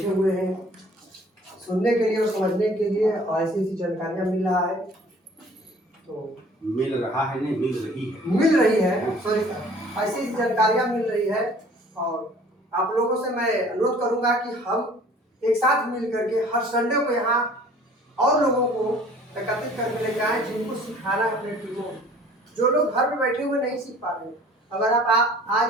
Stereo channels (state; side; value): normal; both; correlation 0.51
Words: हुए हैं सुनने के लिए और समझने के लिए, और ऐसी ऐसी जानकारियाँ मिल रहा है, तो मिल रहा है नहीं मिल रही है सॉरी सर, ऐसी ऐसी जानकारियाँ मिल रही है। और आप लोगों से मैं अनुरोध करूंगा कि हम एक साथ मिल करके हर संडे को यहाँ और लोगों को एकत्रित करके लेके आए, जिनको सिखाना है अपने टीमों, जो लोग घर में बैठे हुए नहीं सीख पा रहे हैं। अगर आप आज